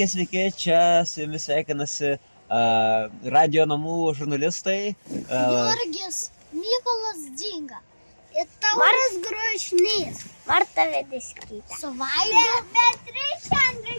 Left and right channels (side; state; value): both; inverted; correlation -1.00